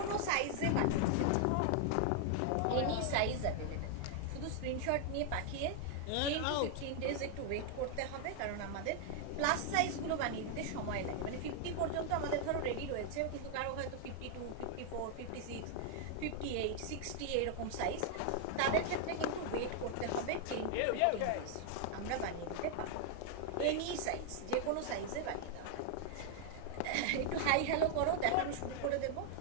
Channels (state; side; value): different; both; correlation 0.00